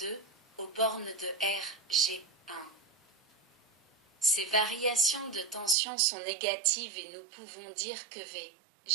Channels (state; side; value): drops out; left; at 5.8 s